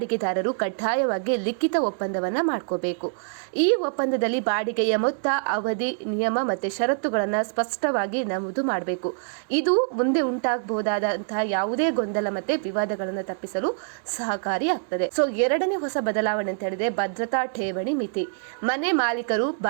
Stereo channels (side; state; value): left; silent; digital silence